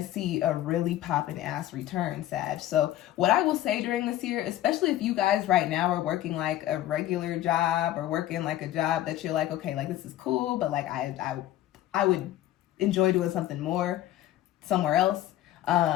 see a really poppin' ass return, Sag. So what I will say during this year, especially if you guys right now are working like a regular job or working like a job that you're like, okay, like this is cool, but like I would enjoy doing something more somewhere else.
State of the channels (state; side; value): quieter; right; 13.8 dB